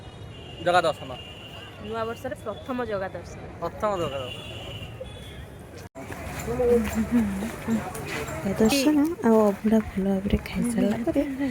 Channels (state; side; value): identical; both; correlation 1.00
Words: ଜଗା ଦର୍ଶନ, ନୂଆ ବର୍ଷରେ ପ୍ରଥମ ଜଗା ଦର୍ଶନ। ଦର୍ଶନ ଆଉ ଅବଢ଼ା ଭଲ ଭାବରେ ଖାଇସାରିଲା ପରେ